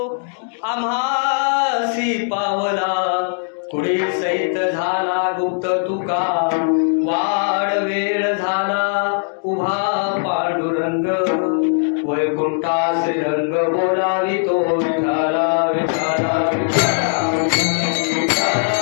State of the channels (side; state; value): right; silent; digital silence